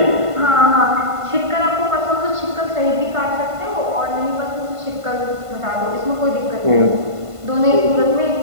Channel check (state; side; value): late; left; 1.5 ms